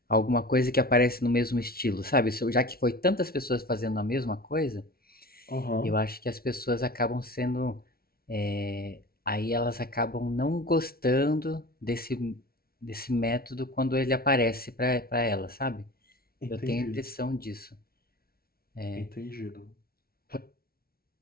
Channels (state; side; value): late; right; 0.44 ms